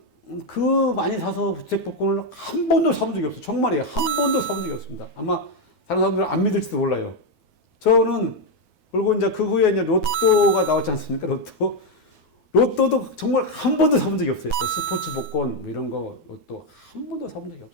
많이 사서 주택 복권을 한 번도 사본 적이 없어요. 정말이에요. 한 번도 사본 적이 없습니다. 아마 다른 사람들은 안 믿을지도 몰라요. 저는 그리고 이제 그 후에 이제 로또가 나왔지 않습니까? 로또도 정말 한 번도 사본 적이 없어요. 스포츠 복권 이런 거 로또 한 번도 사본 적이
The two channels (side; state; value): right; late; 9.3 ms